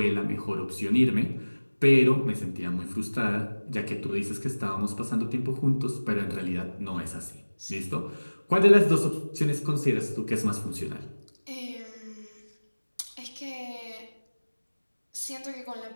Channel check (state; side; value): inverted; both; correlation -1.00